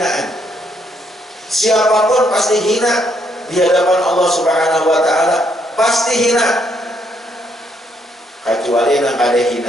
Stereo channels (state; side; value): normal; both; correlation 0.73